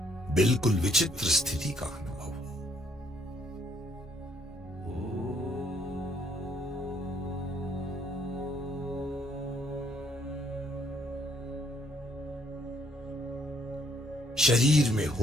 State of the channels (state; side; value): normal; both; correlation 0.68